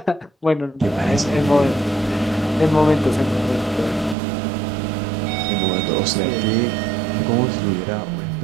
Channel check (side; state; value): left; drops out; at 4.2 s